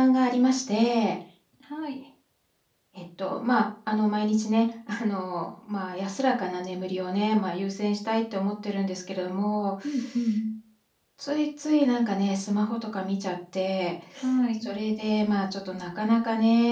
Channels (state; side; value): identical; both; correlation 1.00